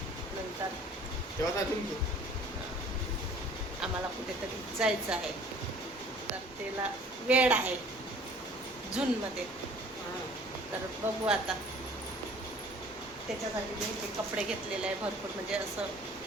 नंतर तेव्हा अजून घेऊ. आम्हाला कुठेतरी जायचं आहे, तर त्याला वेळ आहे जूनमध्ये. तर बघू आता, त्याच्यासाठी मी ते कपडे घेतलेले आहे भरपूर, म्हणजे असं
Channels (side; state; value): both; normal; correlation 0.51